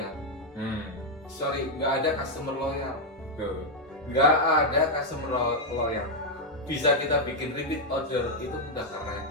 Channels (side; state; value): both; normal; correlation 0.00